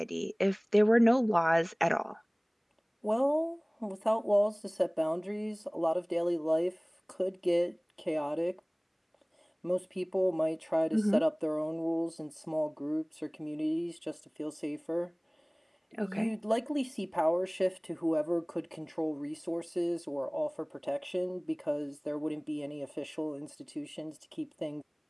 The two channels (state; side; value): identical; both; correlation 1.00